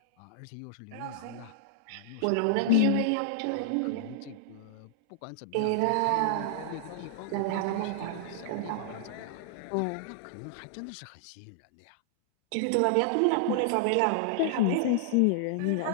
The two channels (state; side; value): different; both; correlation -0.01